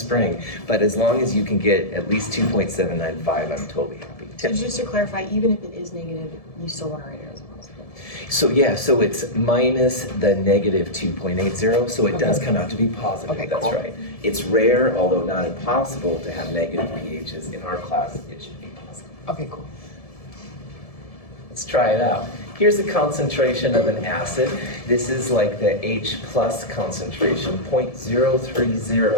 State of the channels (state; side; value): late; right; 1.7 ms